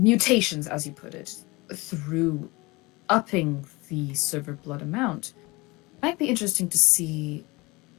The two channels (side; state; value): right; quieter; 23.6 dB